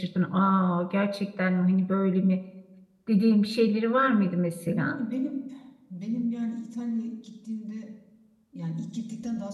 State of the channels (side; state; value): both; identical; correlation 1.00